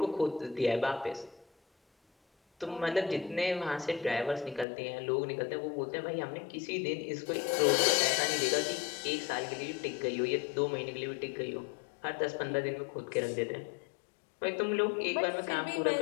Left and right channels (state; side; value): drops out; right; at 4.7 s